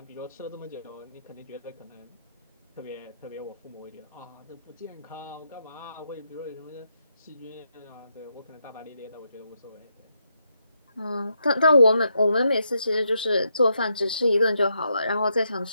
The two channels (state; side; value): inverted; both; correlation -0.81